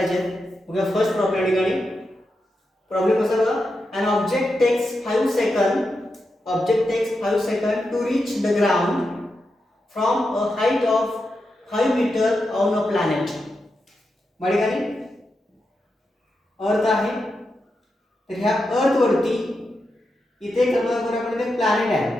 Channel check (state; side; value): normal; both; correlation 0.87